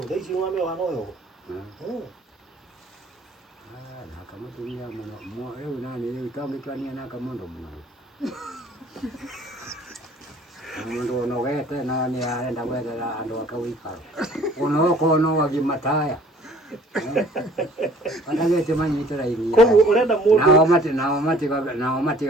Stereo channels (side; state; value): both; normal; correlation 0.54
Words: daisi wame wanoyo na kama tulia mwana leo nani leo itamekania na kama ndo mwana ndo nogete na ni aenda kwenda ndo akawika ono wagimataya anagete manyitira ini ko urenda mundu na mati